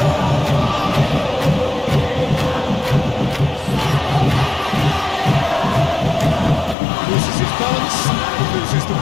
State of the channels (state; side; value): drops out; right; at 6.8 s